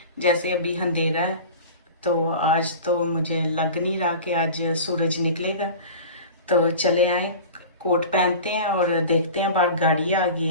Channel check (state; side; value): inverted; both; correlation -0.36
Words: जैसे अभी अंधेरा है, तो आज तो मुझे लग नहीं रहा कि आज सूरज निकलेगा। तो चले आए, कोट पहनते हैं और देखते हैं। बाहर गाड़ी आ गई